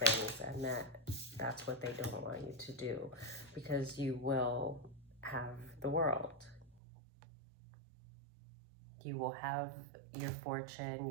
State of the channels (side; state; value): left; drops out; at 6.8 s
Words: and that's what they don't want you to do, because you will have the world. You will have your fortune,